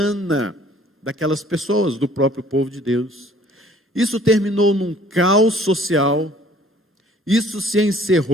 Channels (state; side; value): normal; both; correlation 0.55